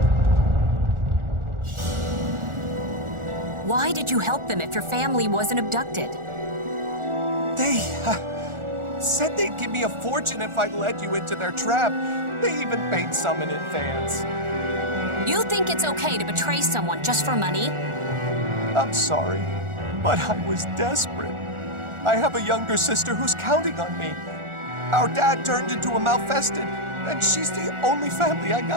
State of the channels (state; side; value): late; left; 1.4 ms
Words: Why did you help them if your family wasn't abducted? They said they'd give me a fortune if I led you into their trap. They even paid some in advance. You think it's okay to betray someone just for money? I'm sorry, but I was desperate. I have a younger sister who's counting on me. Our dad turned into a malfested, and she's the only family I